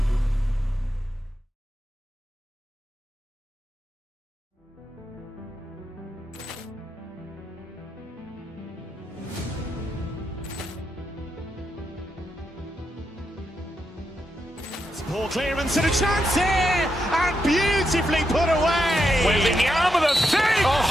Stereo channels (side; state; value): both; normal; correlation 0.84